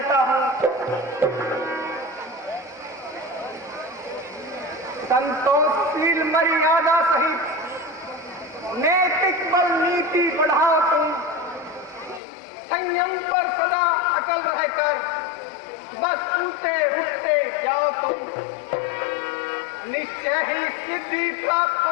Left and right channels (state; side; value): drops out; right; at 12.2 s